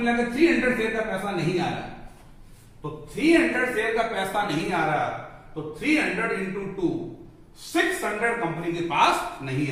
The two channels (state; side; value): identical; both; correlation 1.00